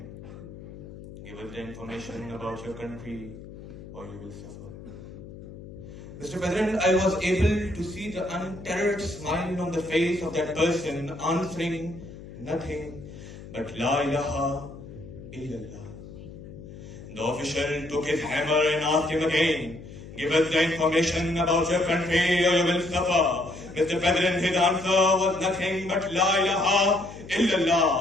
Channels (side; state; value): left; noise; hum, 15 dB below the sound